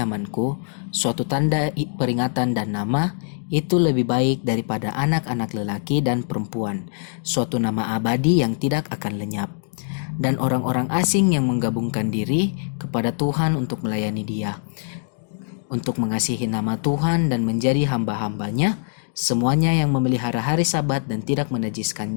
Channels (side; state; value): right; silent; digital silence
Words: suatu tanda peringatan dan nama, itu lebih baik daripada anak-anak lelaki dan perempuan, suatu nama abadi yang tidak akan lenyap. Dan orang-orang asing yang menggabungkan diri kepada Tuhan untuk melayani Dia, untuk mengasihi nama Tuhan dan menjadi hamba-hambanya, semuanya yang memelihara hari Sabat dan tidak